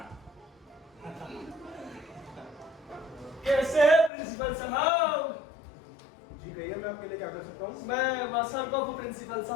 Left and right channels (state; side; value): drops out; right; at 4.1 s